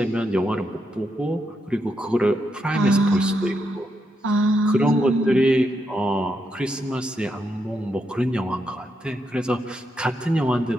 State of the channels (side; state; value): both; normal; correlation 0.81